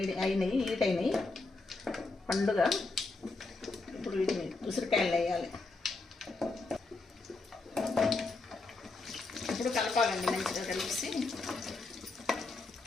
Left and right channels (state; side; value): quieter; right; 3.6 dB